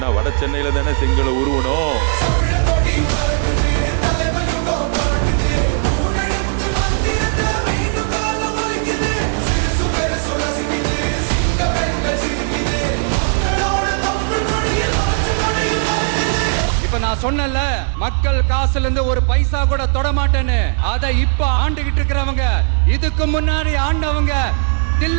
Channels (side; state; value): left; silent; 66 dB below the other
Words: வட சென்னையில தானே செங்கலை உருவணும். இப்ப நான் சொன்னல, மக்கள் காசுல இருந்து ஒரு பைசா கூட தொட மாட்டேன்னு. அதை இப்ப ஆண்டுகிட்டு இருக்கிறவங்க, இதுக்கு முன்னாடி ஆண்டவங்க